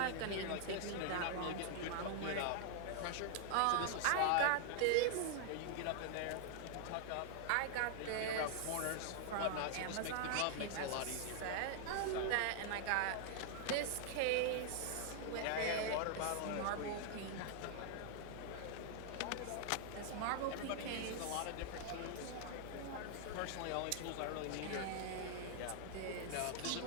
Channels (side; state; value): both; different; correlation 0.00